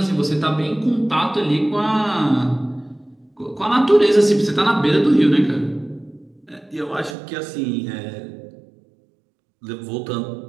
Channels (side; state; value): left; drops out; at 7.2 s